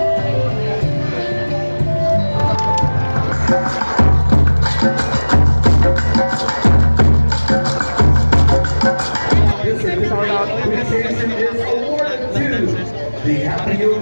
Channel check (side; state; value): both; inverted; correlation -1.00